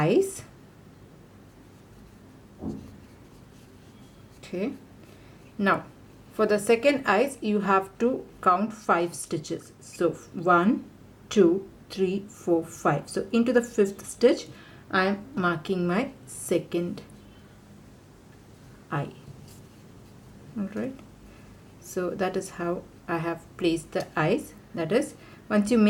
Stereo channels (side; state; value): both; identical; correlation 1.00